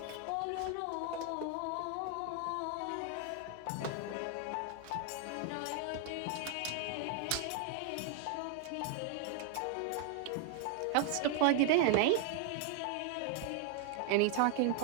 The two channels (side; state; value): both; different; correlation 0.00